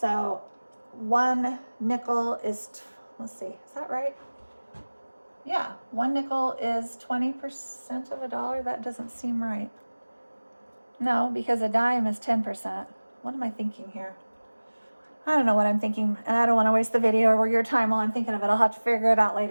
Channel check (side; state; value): both; inverted; correlation -1.00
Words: 1 nickel is, let's see, is that right? Yeah, 1 nickel is 20% of a dollar. That doesn't seem right. No, because a dime is 10%. What am I thinking here? I don't know what I'm thinking, and I don't want to waste the video or your time while I'm thinking of it. I'll have to figure it out